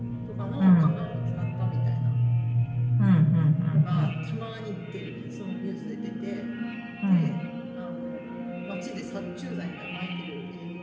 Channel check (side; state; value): both; identical; correlation 1.00